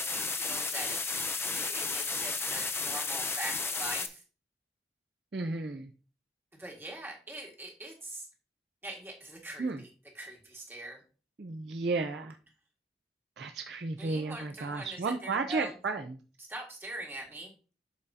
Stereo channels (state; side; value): normal; both; correlation 0.39